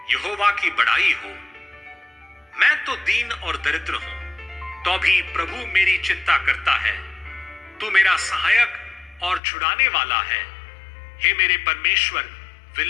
यहोवा की बड़ाई हो। मैं तो दीन और दरिद्र हूं, तो भी प्रभु मेरी चिंता करता है। तू मेरा सहायक और छुड़ाने वाला है। हे मेरे परमेश्वर,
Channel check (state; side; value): drops out; right; at 9.4 s